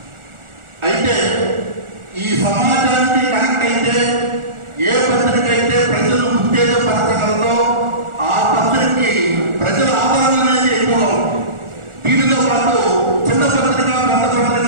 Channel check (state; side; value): late; left; 1.4 ms